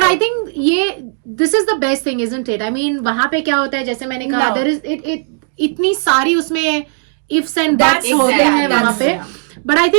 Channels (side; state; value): left; silent; digital silence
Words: I right. Think ये this is the best thing, isn't it? I mean वहां पे क्या होता है, जैसे मैंने कहा, No. देयर इज इट इतनी सारी उसमें इफ्स एंड That's दैट्स होते exactly, हैं वहां पे। that's- बट आई